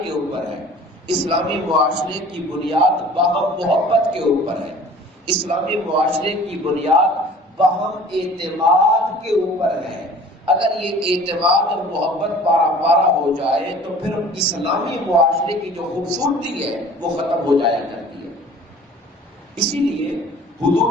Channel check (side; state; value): both; normal; correlation 0.47